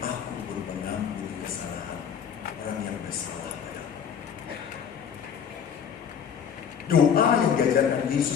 pun mengampuni kesalahan orang yang bersalah padaku. Doa yang diajarkan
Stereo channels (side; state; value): right; quieter; 7.7 dB